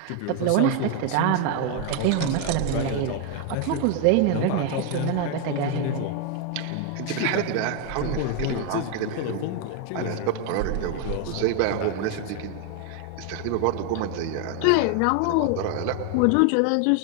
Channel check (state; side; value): different; both; correlation 0.01